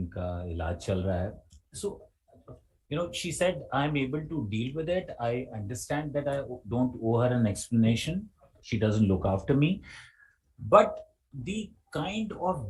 इलाज चल रहा है. सो she said, I'm able to deal with it. I understand that I don't owe her an explanation. She doesn't look after me. But the kind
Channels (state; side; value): identical; both; correlation 1.00